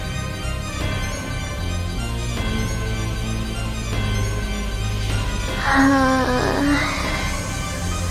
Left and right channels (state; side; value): identical; both; correlation 1.00